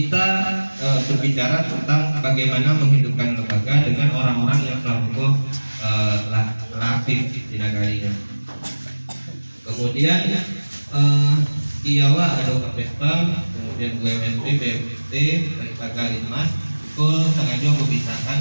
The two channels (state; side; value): inverted; both; correlation -1.00